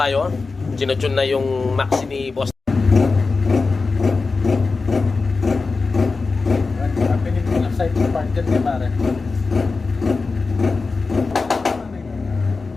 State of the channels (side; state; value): right; quieter; 4.1 dB